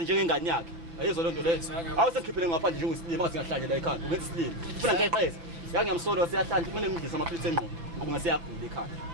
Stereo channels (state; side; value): late; left; 6.0 ms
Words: njengengane yakhe. Ayizwa lento leyo. Awusengikhiphele ngaphandle njengosilima ngathi ngahlanje la ekhaya. Ungenza isilimo. Ufuna ngiqheze. Ngiyamsolo siyahlanje kumele ngidlise amaphilisi engqondo ngoba ngasiyagula ekhaya.